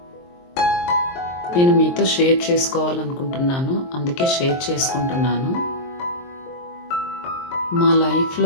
నేను మీతో షేర్ చేసుకోవాలనుకుంటున్నాను, అందుకే షేర్ చేసుకుంటున్నాను. మా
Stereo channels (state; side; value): late; right; 23 ms